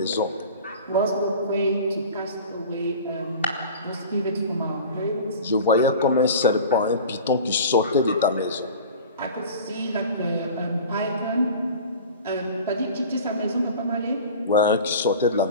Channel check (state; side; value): inverted; both; correlation -0.38